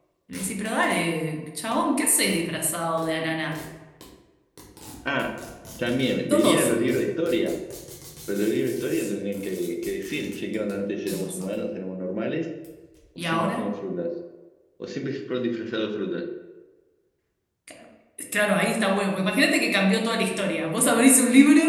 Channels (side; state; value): both; identical; correlation 1.00